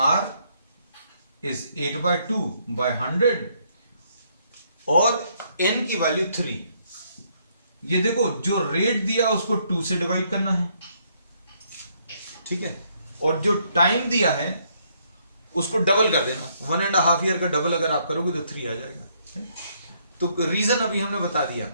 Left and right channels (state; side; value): inverted; both; correlation -0.70